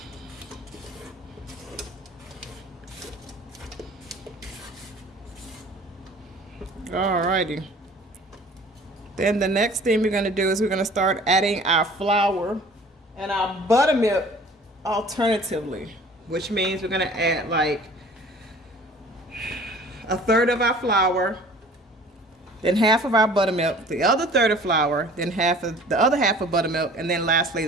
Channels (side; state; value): both; normal; correlation 0.48